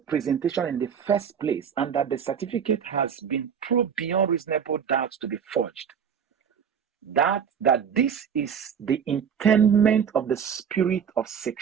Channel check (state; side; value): quieter; left; 7.6 dB